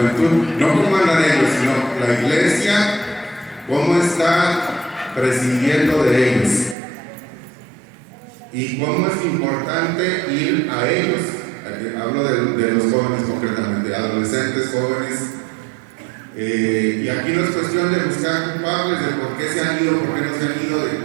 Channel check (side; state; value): left; drops out; at 6.8 s